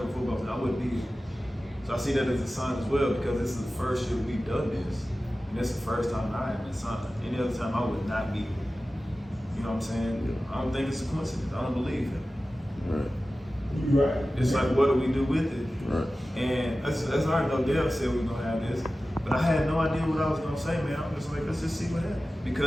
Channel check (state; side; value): normal; both; correlation 0.95